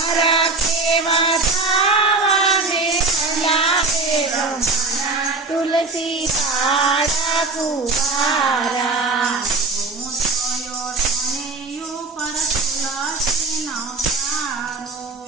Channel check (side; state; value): left; quieter; 3.7 dB